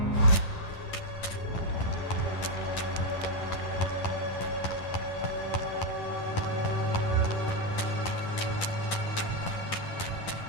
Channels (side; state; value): right; late; 10 ms